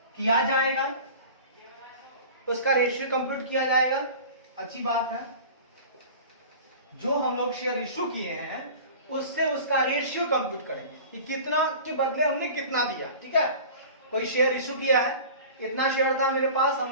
किया जाएगा, अच्छी बात है। जो हम लोग शेयर इश्यू किए हैं उससे उसका रेशियो कंप्यूट करेंगे कि कितना के बदले हमने कितना दिया, ठीक है। कोई शेयर इश्यू किया है, इतना शेयर था मेरे पास,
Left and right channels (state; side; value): inverted; both; correlation -0.39